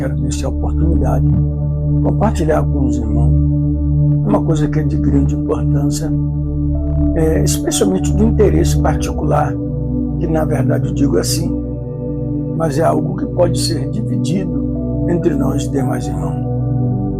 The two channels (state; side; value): identical; both; correlation 1.00